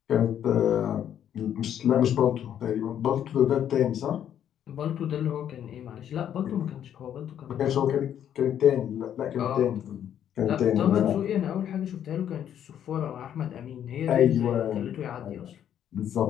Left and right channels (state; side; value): quieter; right; 9.9 dB